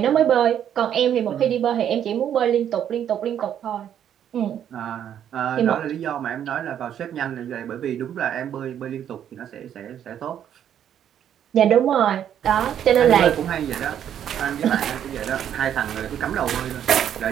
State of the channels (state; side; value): quieter; left; 9.7 dB